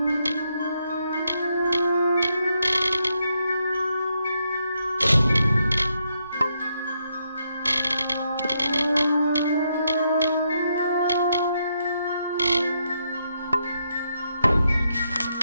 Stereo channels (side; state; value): both; inverted; correlation -0.78